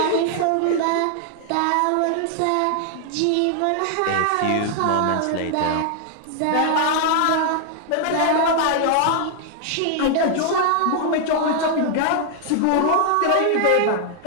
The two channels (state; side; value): different; both; correlation 0.00